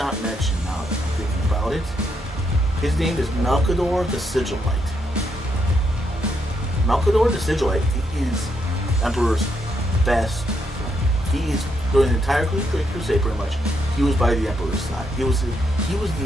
mention. Now that I'm thinking about it, his name is Malcador the Sigilite. Malcador the Sigilite is Emperor's best friend. He is during the entire crusade pretty much. He was by the Emperor's side. He was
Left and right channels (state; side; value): normal; both; correlation 0.78